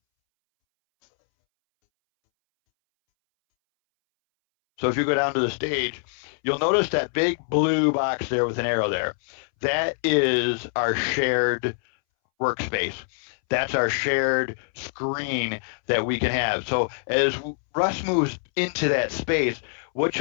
So if you go down to the stage, you'll notice that big blue box there with an arrow there. That is our shared workspace. That's our shared screen that we can have. So as Russ moves into that space, what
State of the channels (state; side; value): silent; right; 62 dB below the other